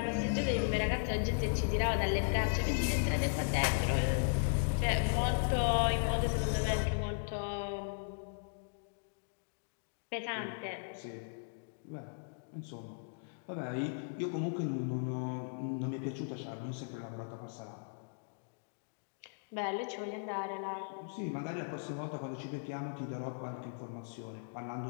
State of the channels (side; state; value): right; silent; digital silence